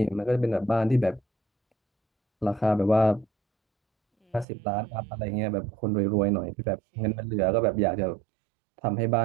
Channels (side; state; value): left; drops out; at 4.5 s